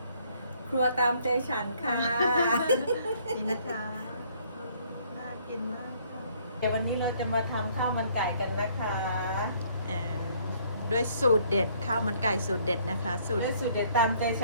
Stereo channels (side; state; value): both; inverted; correlation -0.63